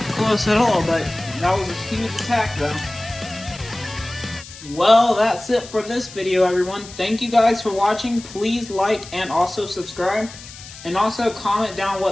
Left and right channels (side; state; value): left; noise; hiss, 16 dB below the sound